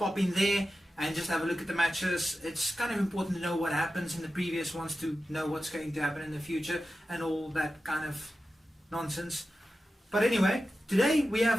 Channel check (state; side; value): normal; both; correlation 0.93